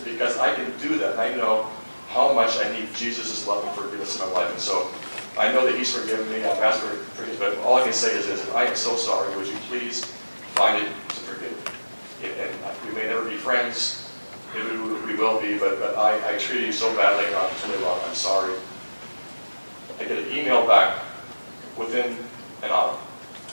because I can do that, and I know how much I need Jesus' love and forgiveness in my life. And so I know that he's forgiven me. I've asked for forgiveness, but all I can say is this: I am so sorry. Would you please find it to forgive me? And we may never be friends. Maybe we will be, but I treated you so badly, and I'm really wrong. I'm sorry. I get an email back within an hour.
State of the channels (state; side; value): inverted; both; correlation -1.00